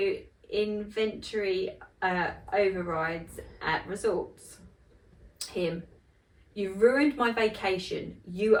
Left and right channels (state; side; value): identical; both; correlation 1.00